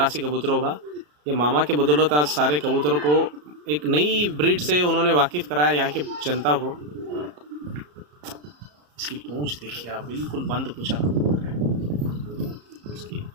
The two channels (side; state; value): left; late; 34 ms